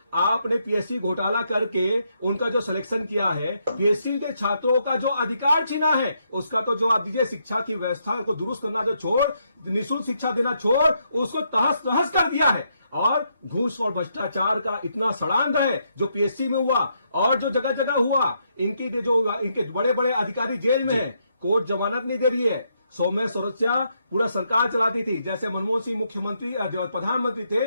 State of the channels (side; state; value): both; inverted; correlation -0.77